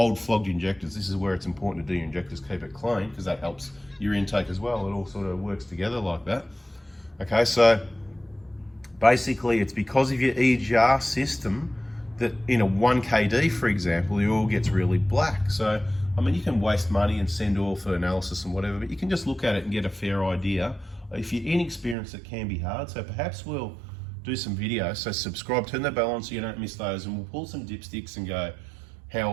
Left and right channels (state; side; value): drops out; left; at 22.0 s